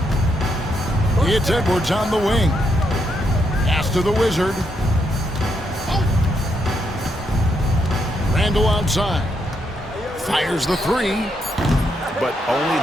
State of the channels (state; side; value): normal; both; correlation 0.78